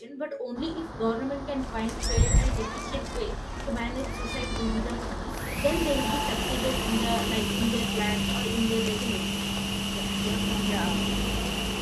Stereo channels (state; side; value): identical; both; correlation 1.00